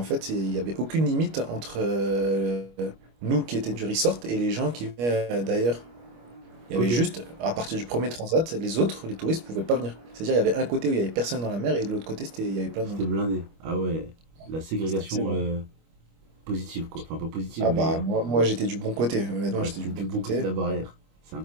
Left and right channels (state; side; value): late; left; 25 ms